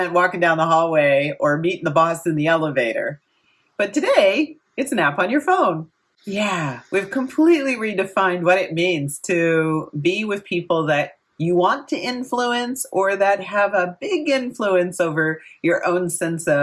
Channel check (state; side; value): identical; both; correlation 1.00